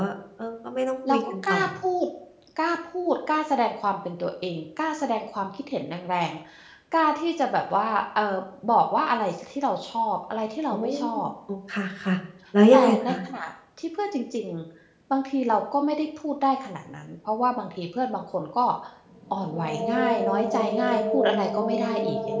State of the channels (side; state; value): both; identical; correlation 1.00